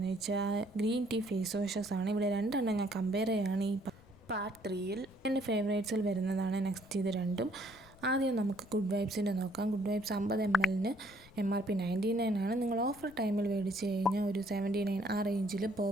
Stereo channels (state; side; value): noise; left; rumble, 24 dB below the sound